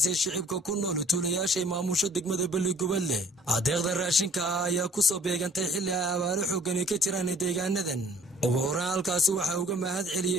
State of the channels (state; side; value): normal; both; correlation 0.55